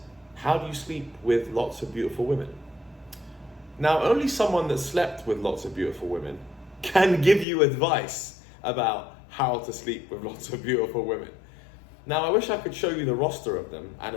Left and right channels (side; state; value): right; drops out; at 7.5 s